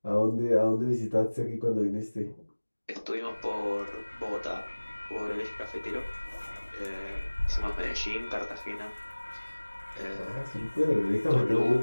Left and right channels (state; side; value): inverted; both; correlation -1.00